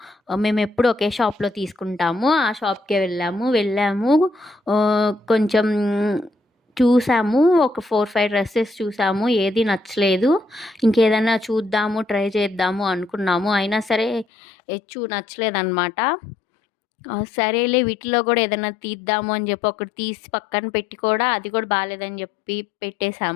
మేమెప్పుడు ఒకే షాప్‌లో తీసుకుంటాము. ఆ షాప్‌కే వెళ్ళాము. కొంచెం చూసాము. ఒక 4, 5 డ్రెసెస్ చూసాము. ఏది నచ్చలేదు. ఇంకేదైనా చూద్దాము, ట్రై చేద్దాము అనుకున్నాము. అయినా సరే నచ్చలేదనమాట. సరేలే వీటిలో కూడా ఏదైనా తీద్దాము అని చెప్పి ఒకటి తీసి పక్కన పెట్టి కూడా అది కూడా బాలేదని చెప్పి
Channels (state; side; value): drops out; right; at 14.2 s